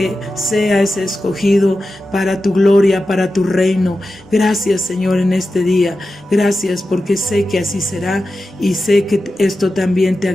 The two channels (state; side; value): normal; both; correlation 0.92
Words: sea ese escogido para tu gloria, para tu reino. Gracias, Señor, en este día. Gracias porque sé que así será, y sé que esto también te